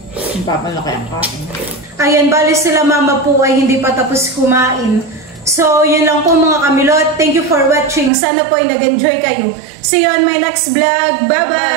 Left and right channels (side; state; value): left; drops out; at 8.1 s